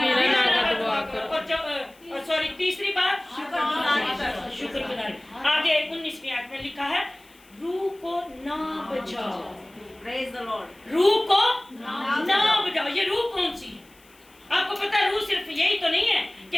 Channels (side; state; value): left; noise; hiss, 28 dB below the sound